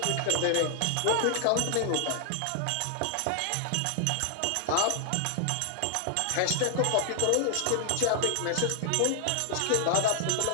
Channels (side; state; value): both; different; correlation 0.00